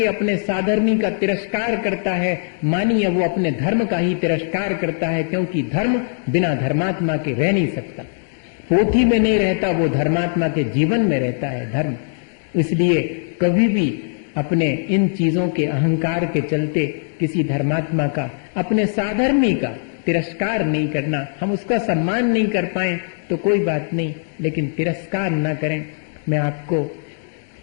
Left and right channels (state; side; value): silent; right; digital silence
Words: अपने साधर्मी का तिरस्कार करता है, मानिए वो अपने धर्म का ही तिरस्कार करता है, क्योंकि धर्म बिना धर्मात्मा के रह नहीं सकता। पोथी में नहीं रहता, वो धर्मात्मा के जीवन में रहता है धर्म। इसलिए कभी भी अपने इन चीजों के अहंकार के चलते किसी धर्मात्मा का, अपने साधर्मी का तिरस्कार नहीं करना। हम उसका सम्मान नहीं कर पाए तो कोई बात नहीं, लेकिन तिरस्कार न करें। मैं आपको